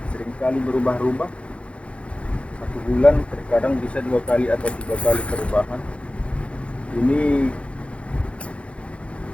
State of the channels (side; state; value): right; late; 0.061 ms